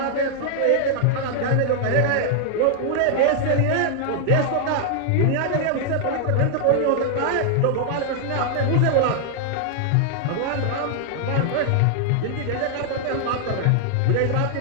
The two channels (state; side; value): different; both; correlation -0.01